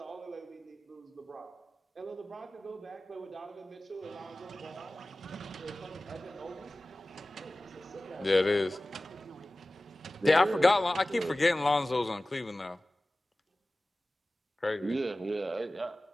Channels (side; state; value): both; normal; correlation 0.97